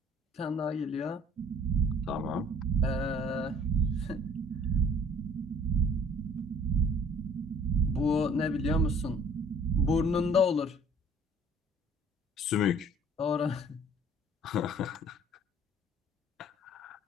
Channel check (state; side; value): normal; both; correlation 0.53